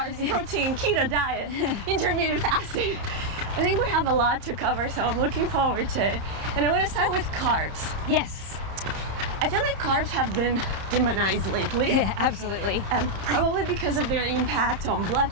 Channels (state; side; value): late; left; 30 ms